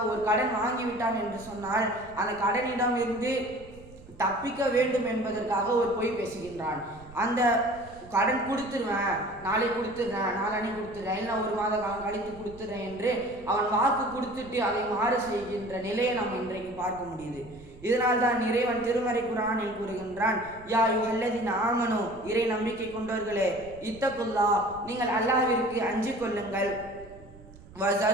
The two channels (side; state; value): right; noise; rumble, 20 dB below the sound